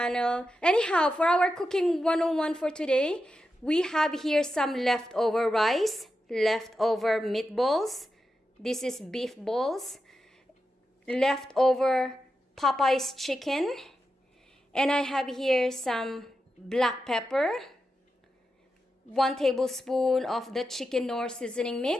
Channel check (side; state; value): both; normal; correlation 0.89